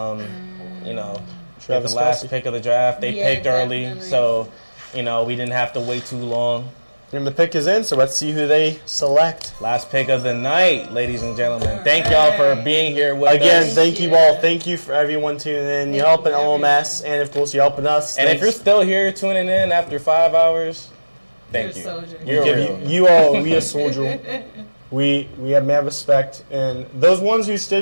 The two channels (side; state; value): both; inverted; correlation -1.00